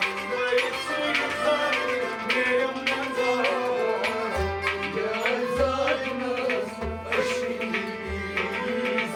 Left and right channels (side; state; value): both; identical; correlation 1.00